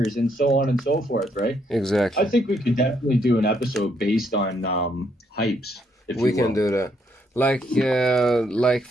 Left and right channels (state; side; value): normal; both; correlation 0.73